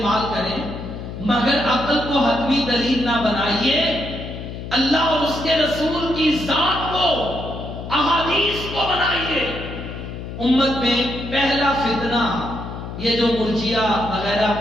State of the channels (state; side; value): noise; left; hum, 9 dB below the sound